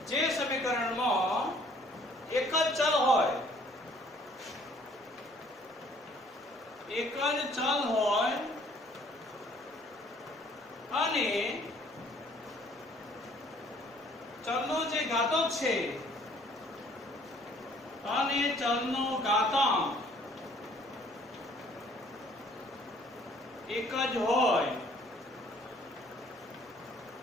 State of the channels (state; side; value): normal; both; correlation 0.58